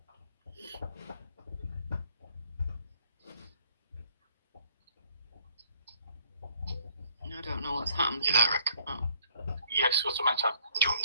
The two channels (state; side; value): inverted; both; correlation -0.63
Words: I don't know what's happened. You there, Rick? Oh. Yes, what's the matter? Do you want me